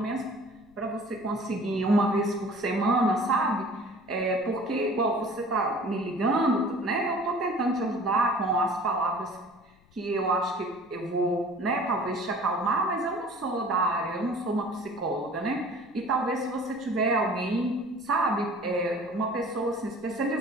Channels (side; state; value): left; noise; rumble, 30 dB below the sound